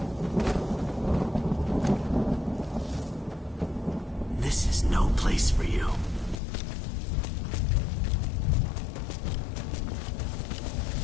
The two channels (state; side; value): drops out; right; at 6.4 s